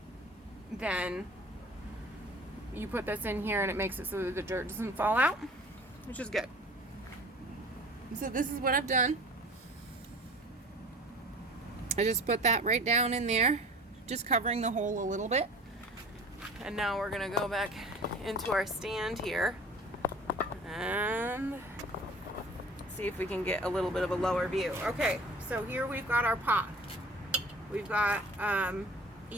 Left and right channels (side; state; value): both; normal; correlation 0.44